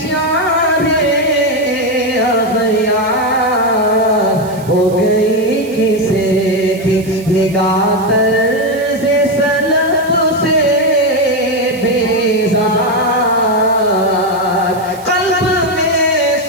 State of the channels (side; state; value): right; noise; hiss, 21 dB below the sound